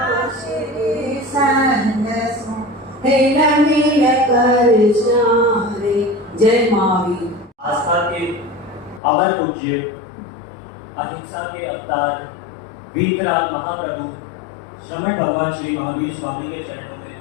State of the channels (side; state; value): right; drops out; at 9.0 s